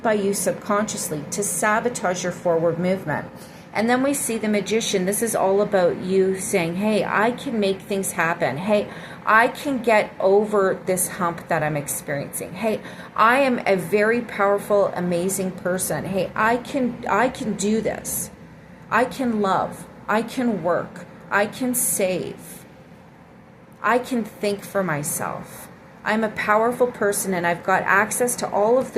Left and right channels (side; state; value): both; identical; correlation 1.00